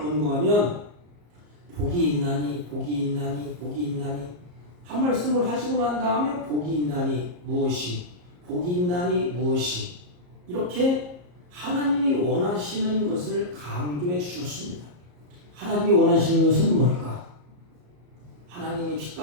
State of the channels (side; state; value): left; late; 34 ms